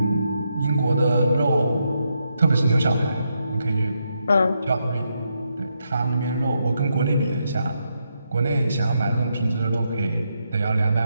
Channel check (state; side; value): inverted; both; correlation -0.81